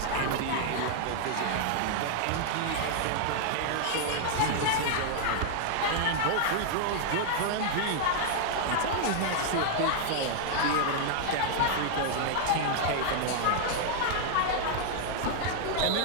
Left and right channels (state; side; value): different; both; correlation 0.00